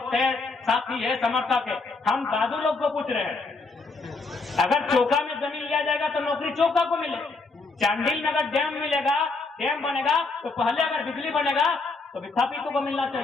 है, साथी है, समर्थक है। हम दादू लोग को पूछ रहे हैं, अगर चौका में जमीन लिया जाएगा तो नौकरी चौका को मिले। चांडिल में अगर डैम मिलेगा, डैम बनेगा तो पहले अगर बिजली बनेगा तो विस्थापितों को मिलना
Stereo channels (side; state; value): right; quieter; 3.8 dB